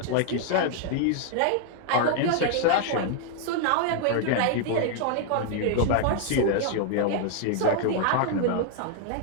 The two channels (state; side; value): different; both; correlation 0.00